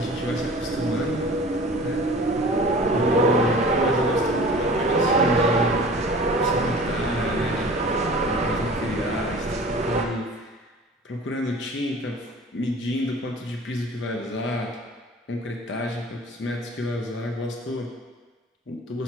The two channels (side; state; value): both; normal; correlation 0.43